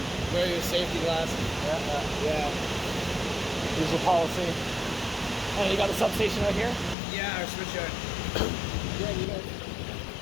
wear your safety glasses. yeah. Usual policy. And you got the substation out here? Yeah, our switchyard. Yeah, you guys.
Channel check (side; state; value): right; drops out; at 7.0 s